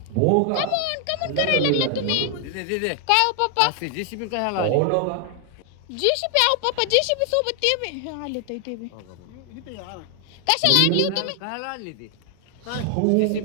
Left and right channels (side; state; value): both; different; correlation 0.00